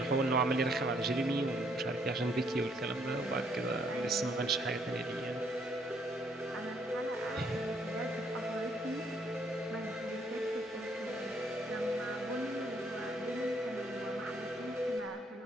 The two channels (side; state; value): both; normal; correlation 0.68